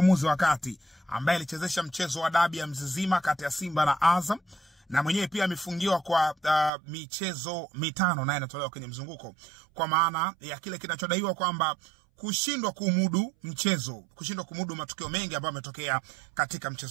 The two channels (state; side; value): drops out; left; at 6.7 s